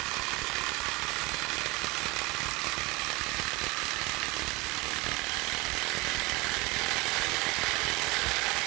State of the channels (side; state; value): left; quieter; 24.1 dB